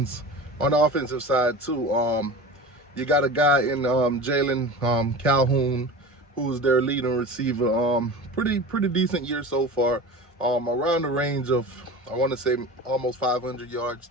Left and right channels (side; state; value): both; normal; correlation 0.34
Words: on the offensive side too. You got a guy in Jalen Calhoun, who's their leading receiver. Pretty decent year so far. Around the range of, I want to say, almost 500 yards.